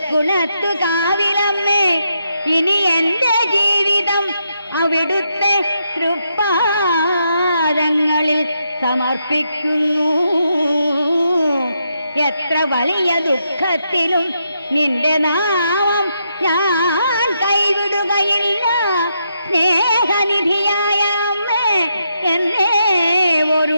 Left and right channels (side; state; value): both; inverted; correlation -0.81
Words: കാവിലമ്മേ, ഇനി എൻ്റെ ജീവിതം അവിടുത്തെ തൃപ്പാദങ്ങളിൽ സമർപ്പിക്കുന്നു. എത്ര വലിയ ദുഃഖത്തിലും നിന്റെ നാമം ഞാൻ കൈവിടുകയില്ല. സ്നേഹനിധിയായ അമ്മേ, എന്നെ